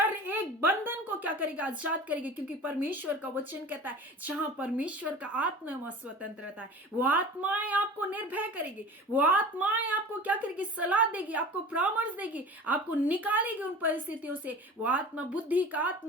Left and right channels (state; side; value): normal; both; correlation 0.38